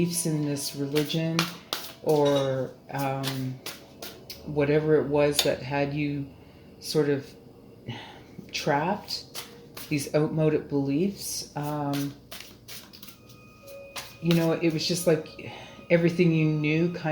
in this religion, or whatever it was that had you sort of trapped, these outmoded beliefs, it was just like everything you knew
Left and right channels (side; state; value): both; identical; correlation 1.00